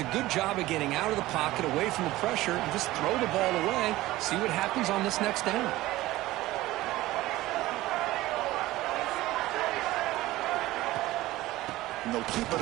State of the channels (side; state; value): left; quieter; 17.2 dB